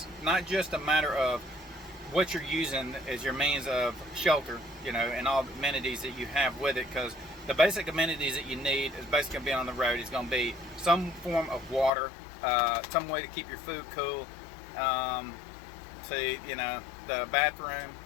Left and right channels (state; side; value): drops out; right; at 11.9 s